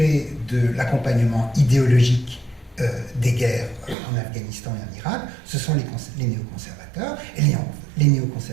de l'accompagnement idéologique des guerres en Afghanistan et en Irak, ce sont les néoconservateurs. Et les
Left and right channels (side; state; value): left; drops out; at 4.0 s